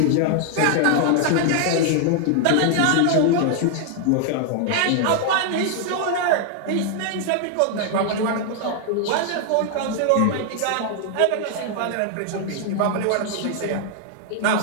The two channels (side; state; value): both; different; correlation 0.00